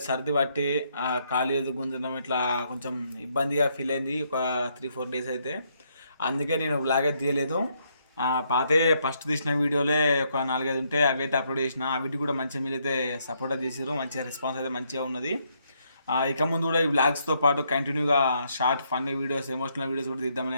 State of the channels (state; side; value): inverted; both; correlation -0.74